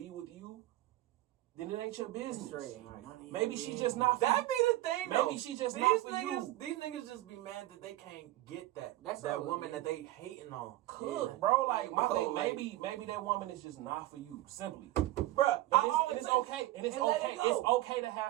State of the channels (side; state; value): left; quieter; 16.6 dB